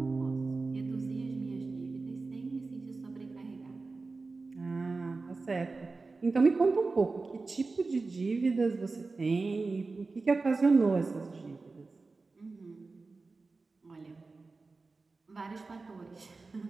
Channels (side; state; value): left; quieter; 3.8 dB